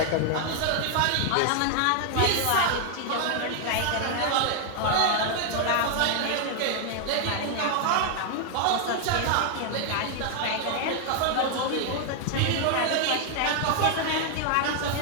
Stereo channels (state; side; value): different; both; correlation 0.00